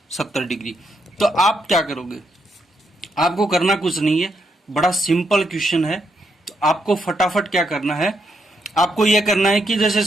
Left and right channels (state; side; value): normal; both; correlation 0.79